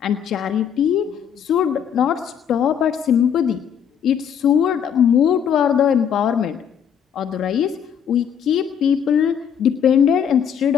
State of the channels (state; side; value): quieter; right; 8.2 dB